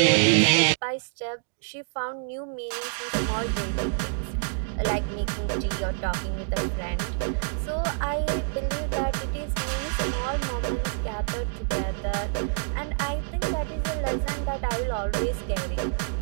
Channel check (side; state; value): left; silent; digital silence